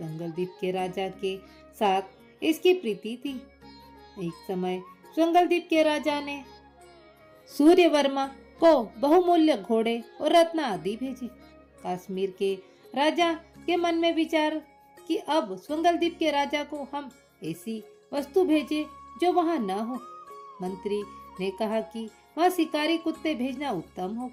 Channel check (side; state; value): both; identical; correlation 1.00